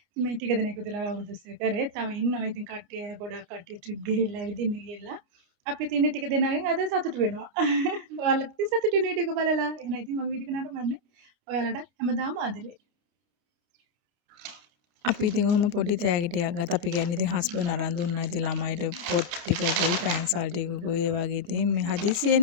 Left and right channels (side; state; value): left; late; 29 ms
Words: මේ ටික දෙනෙක් විතර අවුරුදු 20 කරේ. තව ඉන්නවා ඉතින් කට්ටිය ගොඩක් කට්ටිය ට්‍රිප් ගිහිල්ලා ඇවිදින්න ගිහිල්ලා. අපි ඉතින් ටික දෙනාගෙන් අද සතුටු වෙනවා. ඔයාලත් ඉතින් සතුටු වෙන වීඩියෝ එක බලලා. එහෙනම් ඉතින් මම වීඩියෝ එක නරඹන්නේ. ඔයාලට හැමදාම ආදරේ. අපි ඉතින් ඔහොම පොඩි තෑගිටියක් ගත්තා. අපි කියන්නේ ඉතින් හස්බන්ඩ් අරන් දුන්නා. ඉතින් ළමයිට පොත් ටිකකුයි පෑන්සල් ටිකකුයි ඒ වගේ ඉතින් මේ